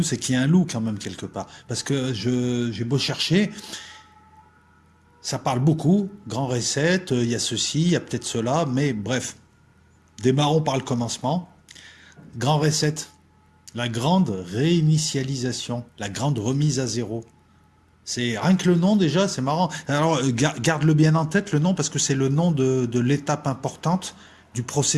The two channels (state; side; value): identical; both; correlation 1.00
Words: c'est qu'il y a un loup quand même quelque part. Parce que j'ai beau chercher, ça parle beaucoup. Grand reset, il y a ceci, il y a peut-être cela, mais bref, démarrons par le commencement. Grand reset. La grande réinitialisation, la grande remise à zéro. C'est rien que le nom déjà, c'est marrant. Alors garde-le bien en tête le nom parce que c'est le nom de l'étape importante du